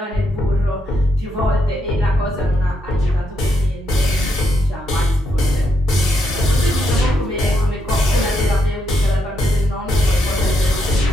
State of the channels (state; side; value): normal; both; correlation 0.79